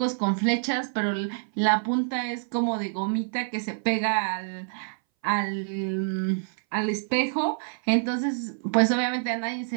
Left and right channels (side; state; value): left; silent; 60 dB below the other